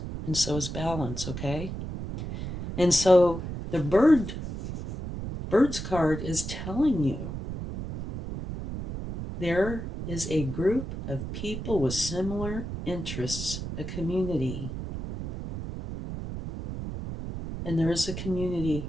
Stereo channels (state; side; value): noise; right; rumble, 7 dB below the sound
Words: And so is balance, okay? And so the bird's card is telling you there is a group of people with similar interests, a community. And there is a